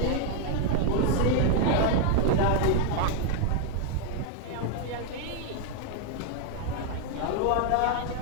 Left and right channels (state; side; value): different; both; correlation 0.01